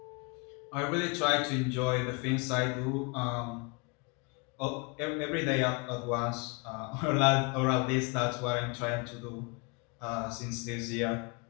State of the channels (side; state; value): right; quieter; 31.6 dB